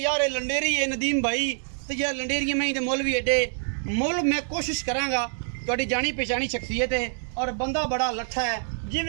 यार ये लंडेरी है नदीम भाई, तो यार लंडेरी में तो मुल भी एडे मुल। मैं कोशिश करांगा, तुहाडी जानी पहचानी शख्सियत है और बंदा बड़ा लट्ठा है,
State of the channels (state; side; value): silent; left; digital silence